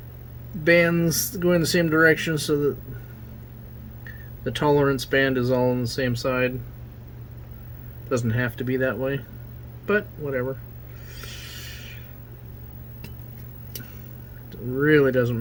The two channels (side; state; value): both; identical; correlation 1.00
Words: bands going the same direction so that the tolerance band is all on the same side. Doesn't have to be that way, but whatever. Really doesn't